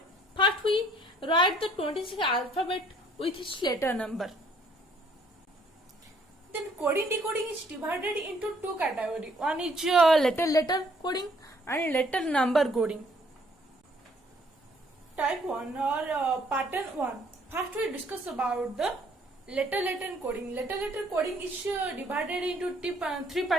first we write the 26 alphabet with its letter number. Then coding decoding is divided into two categories. One is letter coding and letter number coding. Type 1 or pattern 1. First we discuss about the letter coding. Letter coding is divided into three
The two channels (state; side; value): normal; both; correlation 0.63